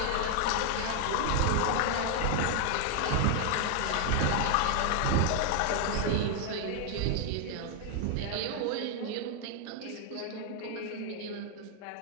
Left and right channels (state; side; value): different; both; correlation 0.00